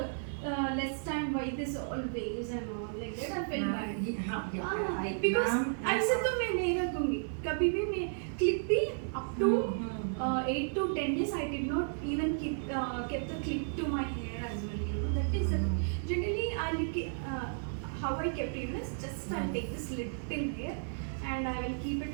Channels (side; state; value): left; silent; 55 dB below the other